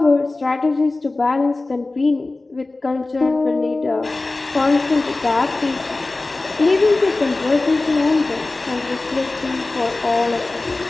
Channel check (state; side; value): quieter; right; 3.2 dB